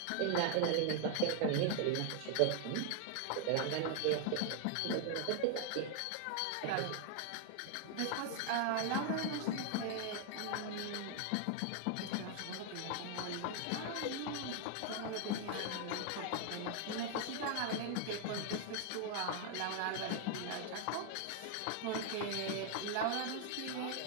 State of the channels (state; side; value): different; both; correlation 0.00